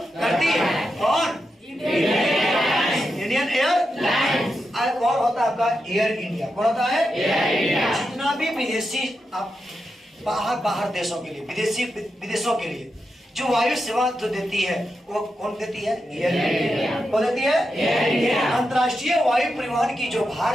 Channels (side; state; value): both; normal; correlation 0.87